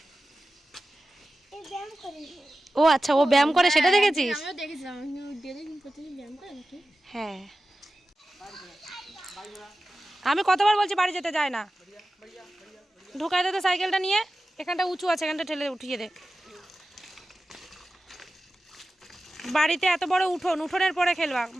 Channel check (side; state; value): both; normal; correlation 0.94